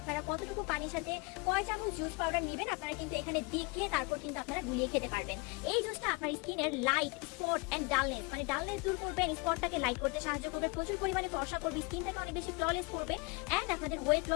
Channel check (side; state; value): right; quieter; 28.7 dB